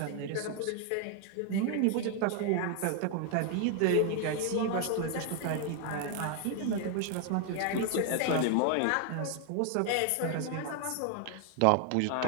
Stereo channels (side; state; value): both; different; correlation 0.00